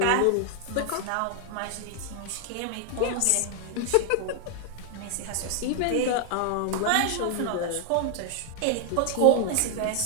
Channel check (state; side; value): different; both; correlation 0.00